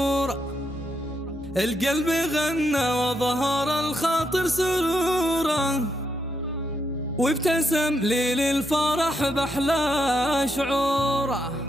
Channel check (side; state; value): both; normal; correlation 0.80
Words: القلب غنى وظهر الخاطر سرورا، وابتسم لي للفرح بأحلى شعوره.